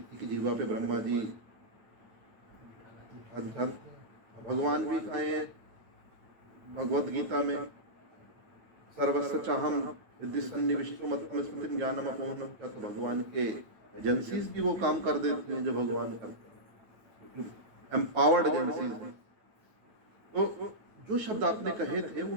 की जीवा पे ब्रह्मा जी भगवान भी कहे हैं भगवत गीता में, सर्वस्व चाहम रिद्धि सन्निविष्टो मत्तम स्मृतिम ज्ञानम अपूर्णम। क्या तो भगवान के एजेंसीज भी वो काम कर देती हैं जो भगवान करते हैं, एम्पावर्ड एजेंसीज हैं। तो जो शब्द आपने कहे थे वो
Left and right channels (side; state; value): left; late; 9.4 ms